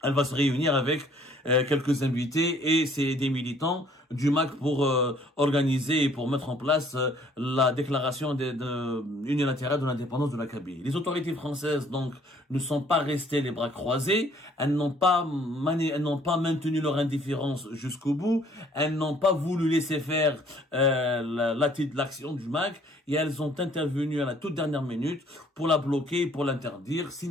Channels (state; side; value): normal; both; correlation 0.59